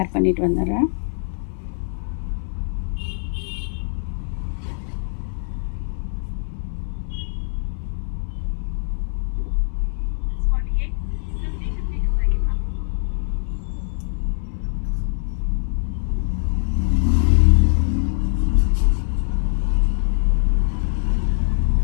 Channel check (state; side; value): silent; right; digital silence